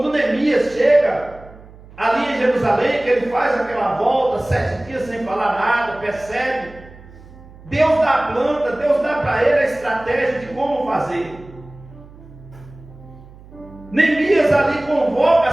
Neemias chega ali em Jerusalém, que ele faz aquela volta, 7 dias sem falar nada, percebe, Deus dá a planta, Deus dá para ele a estratégia de como fazer. Neemias ali convoca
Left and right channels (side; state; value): right; noise; hum, 21 dB below the sound